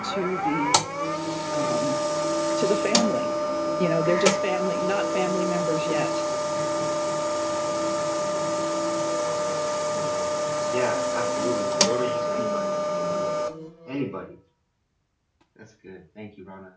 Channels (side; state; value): both; identical; correlation 1.00